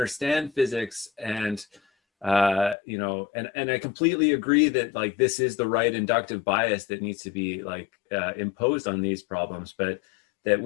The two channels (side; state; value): right; drops out; at 2.8 s